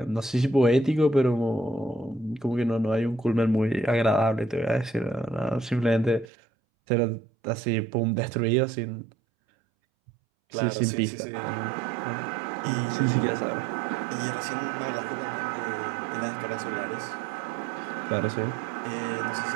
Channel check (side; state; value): left; drops out; at 6.2 s